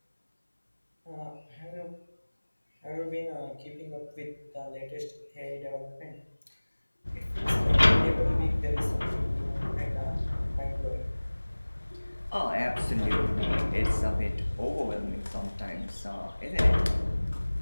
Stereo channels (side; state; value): both; inverted; correlation -1.00